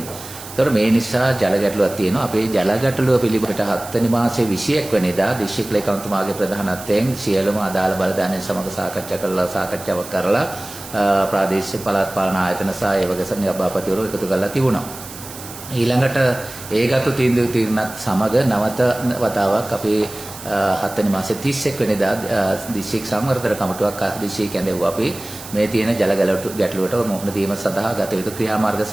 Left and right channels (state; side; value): noise; right; hiss, 14 dB below the sound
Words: ඒතර මේ නිසා ජල ගැටලුවක් තියෙනවා. අපේ ජල ගැටලුව පිළිබඳට 7 වෙනි මාසයේ 21 වෙනිදා දිස්ත්‍රික් ලේකම්තුමාගේ ප්‍රධානත්වයෙන් සියලුම අදාළ බලධාරීන් සමග සාකච්ඡාවක් කරලා ප්‍රාදේශීය පළාත් පාලන ආයතන සහ ඒ වගේ සභාපතිවරු එකතු කරලා තිබුණා. ඊළඟට ඒගත්තු තීන්දුවත් සමග නවත වතාවක් අපේ 7 වෙනි මාසේ 31 වෙනිදා දිස්ත්‍රික් සංවර්ධන කමිටුවක් දිස්ත්‍රික් ඇඳෙව්වා. අපි මේ තියෙන ජල ගැටලුවට මුහුණ දීම සඳහා ගත යුතු ක්‍රියාමාර්ග